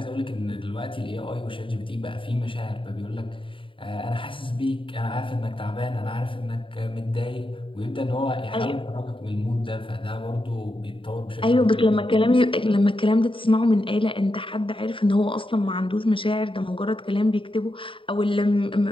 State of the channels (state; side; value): late; right; 0.25 ms